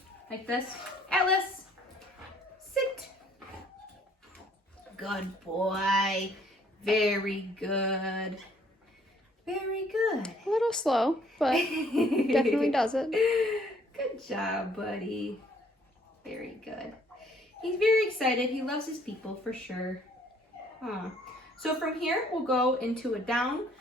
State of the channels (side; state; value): both; normal; correlation 0.61